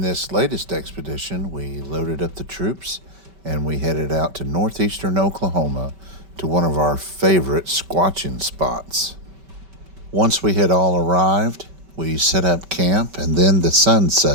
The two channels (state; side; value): late; left; 5.2 ms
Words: this latest expedition, we loaded up the troops and we headed out to northeastern Oklahoma to one of our favorite squatching spots. Once we had all arrived, we set up camp and then the sun